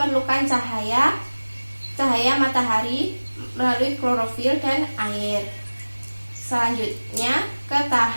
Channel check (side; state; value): both; inverted; correlation -1.00